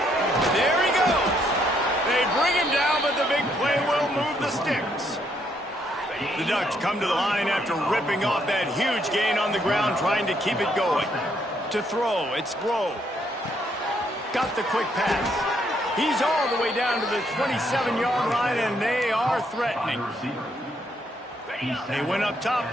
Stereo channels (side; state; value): both; normal; correlation 0.72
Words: There he goes. They bring him down, but the big play will move the sticks. The Ducks come to the line after ripping off that huge gain on the ground, trying to keep it going. To throw, it's Grove. Got the quick pass. He's all the way down to the 27-yard line, and they are threatening. They went up top